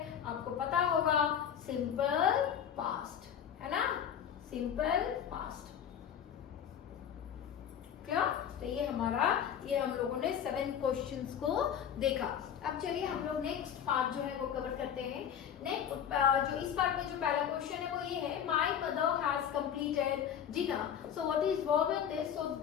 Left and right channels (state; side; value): quieter; right; 8.8 dB